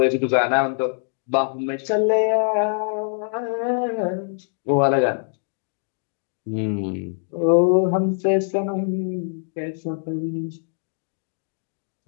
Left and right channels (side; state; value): right; silent; digital silence